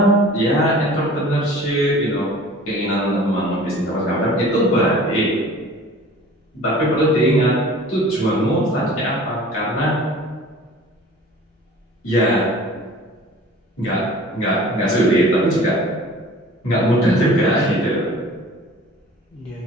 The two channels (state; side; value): normal; both; correlation 0.45